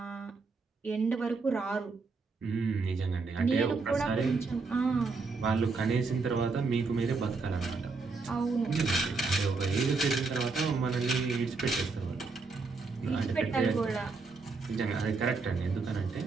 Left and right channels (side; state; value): left; quieter; 4.2 dB